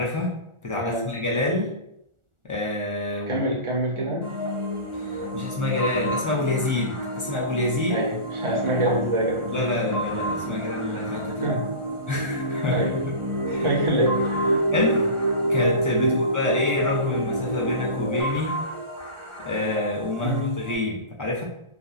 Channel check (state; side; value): late; left; 1.4 ms